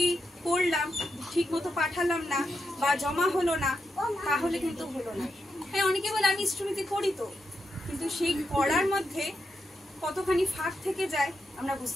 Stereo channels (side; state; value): both; normal; correlation 0.85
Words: করলাম, ঠিক মতো পাঠালাম না বা জমা হলো না, তাহলে কিন্তু হলো না। হ্যাঁ, অনেকে বলে আমি ইষ্টভৃতি করি তো, কিন্তু সেই করার মধ্যে কতখানি ফাঁক থেকে যায় আমরা